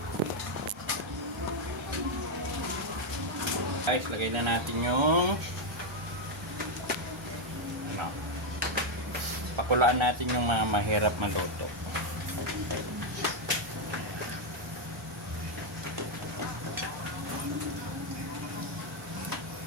Guys, lagay na natin yung ano, pakulaan natin yung mga mahirap maluto.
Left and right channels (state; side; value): normal; both; correlation 0.02